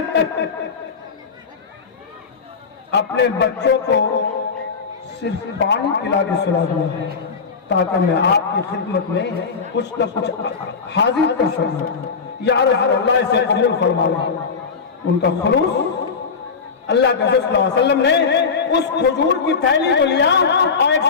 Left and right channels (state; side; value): quieter; right; 5.3 dB